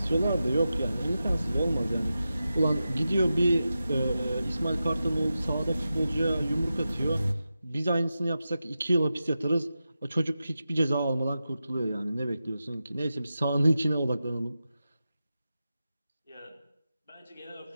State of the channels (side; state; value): both; inverted; correlation -0.92